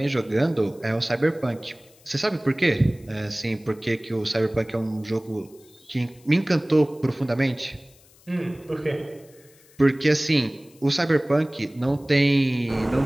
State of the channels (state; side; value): noise; left; hiss, 28 dB below the sound